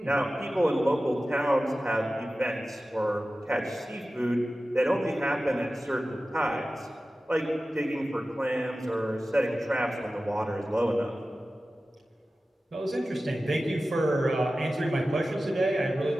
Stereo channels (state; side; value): normal; both; correlation 0.95